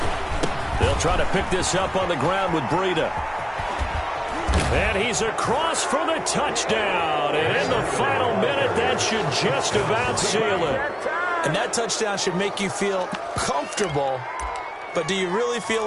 They'll try to pick this up on the ground with Breida. And he's across for the touchdown. And in the final minute, that should just about seal it. And that touchdown should make you feel comfortable. But do you really feel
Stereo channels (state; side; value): identical; both; correlation 1.00